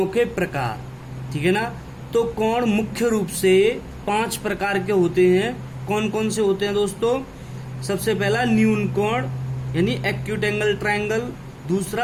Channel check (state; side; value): identical; both; correlation 1.00